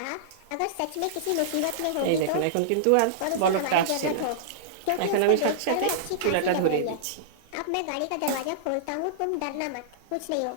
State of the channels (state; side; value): different; both; correlation -0.02